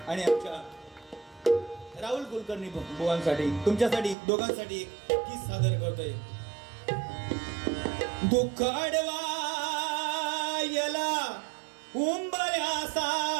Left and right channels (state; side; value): drops out; left; at 4.2 s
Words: आणि आमच्या राहुल कुलकर्णी बुवांसाठी, तुमच्यासाठी दोघांसाठी एक गीत सादर करतोय. दुःख अडवायला